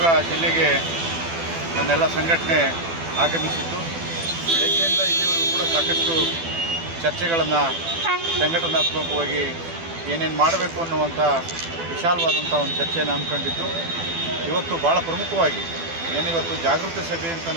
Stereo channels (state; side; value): late; left; 12 ms